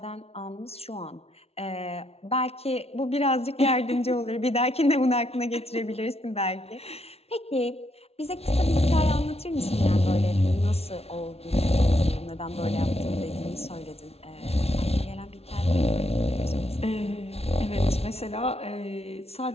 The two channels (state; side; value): late; right; 0.30 ms